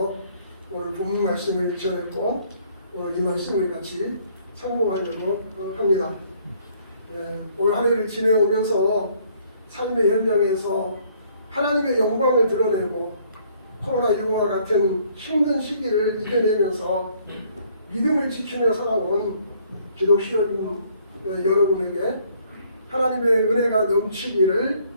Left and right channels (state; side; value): inverted; both; correlation -0.63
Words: 오늘 본문 말씀을 전했고 오늘 이 말씀을 같이 상봉하려고 합니다. 오늘 한 해를 지내오면서 삶의 현장에서 하나님의 영광을 드러내고 코로나19와 같은 힘든 시기를 이겨내면서 믿음을 지키며 살아온 기독신 여러분에게 하나님의 은혜가 넘치기를